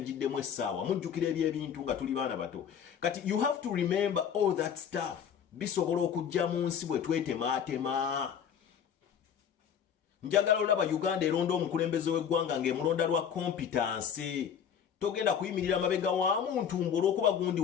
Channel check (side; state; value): right; quieter; 8.1 dB